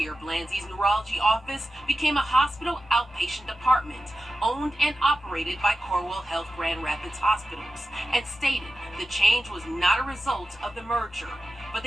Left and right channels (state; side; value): normal; both; correlation 0.93